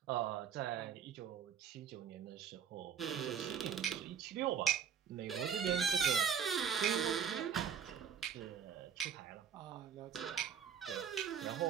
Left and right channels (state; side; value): quieter; left; 7.7 dB